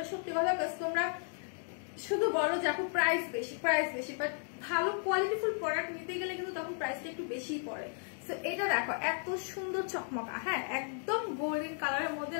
সত্যি কথা। তোমরা শুধু বলো যে আপু প্রাইস বেশি, প্রাইস বেশি, বাট ভালো কোয়ালিটিফুল প্রোডাক্ট নিতে গেলে কিন্তু তখন প্রাইসটা একটু বেশিই পড়ে। সো এটা দেখো এত সুন্দর চকমকা, হ্যাঁ একদম গোল্ডেন কালারের মধ্যে।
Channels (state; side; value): silent; right; 55 dB below the other